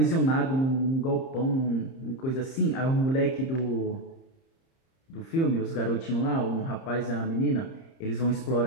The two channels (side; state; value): right; late; 30 ms